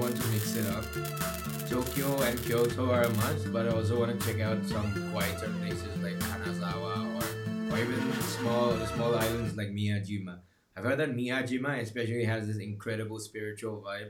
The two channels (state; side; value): identical; both; correlation 1.00